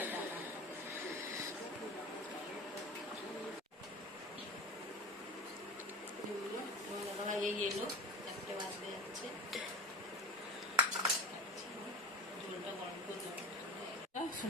এটা দাদাভাই এই এলো, 1টে বাজতে যাচ্ছে। ঝোলটা গরম করে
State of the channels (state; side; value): normal; both; correlation 0.33